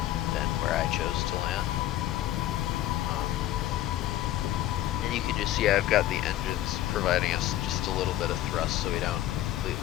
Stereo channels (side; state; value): right; quieter; 13.5 dB